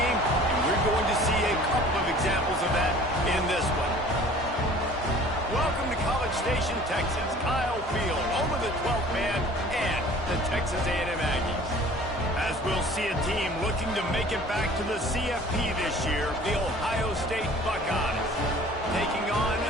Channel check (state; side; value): normal; both; correlation 0.48